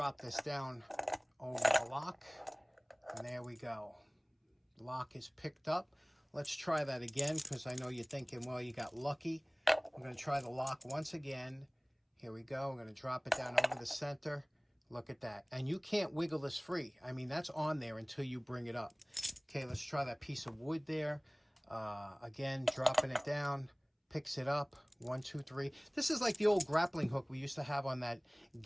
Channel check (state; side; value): identical; both; correlation 1.00